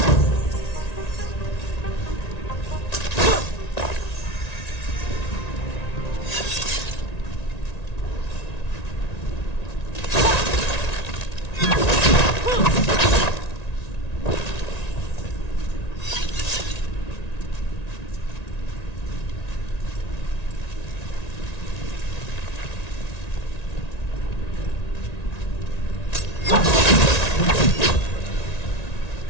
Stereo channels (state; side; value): late; right; 1.9 ms